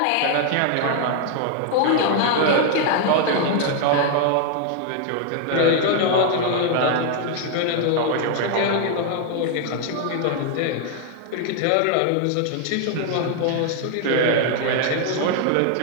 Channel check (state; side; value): different; both; correlation 0.00